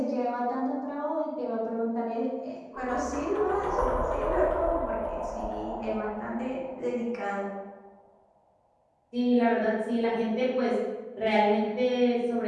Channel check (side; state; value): both; identical; correlation 1.00